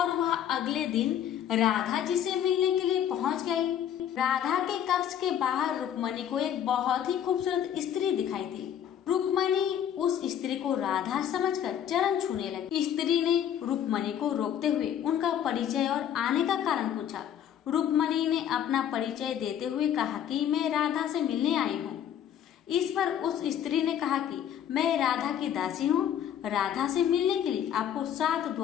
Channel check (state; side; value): quieter; right; 9.7 dB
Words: वह अगले दिन राधा जी से मिलने के लिए पहुंच गई। राधा के कक्ष के बाहर रुक्मणी को एक बहुत ही खूबसूरत स्त्री दिखाई दी। रुक्मणी उस स्त्री को राधा समझकर चरण छूने लगी। स्त्री ने रुक्मणी को रोकते हुए उनका परिचय और आने का कारण पूछा। रुक्मणी ने अपना परिचय देते हुए कहा कि मैं राधा से मिलने आई हूँ। इस पर उस स्त्री ने कहा कि मैं राधा की दासी हूँ। राधा से मिलने के लिए आपको 7